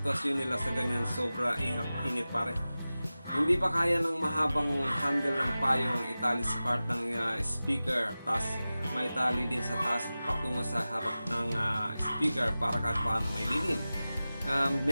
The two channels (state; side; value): inverted; both; correlation -0.96